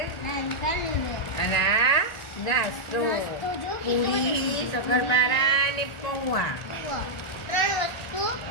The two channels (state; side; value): late; right; 1.9 ms